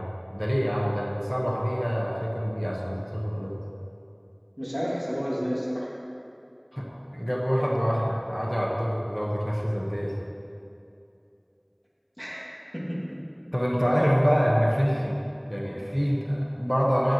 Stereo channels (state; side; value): identical; both; correlation 1.00